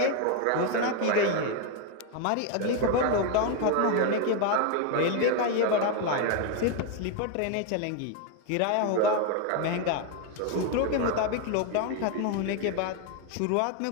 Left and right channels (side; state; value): both; different; correlation 0.01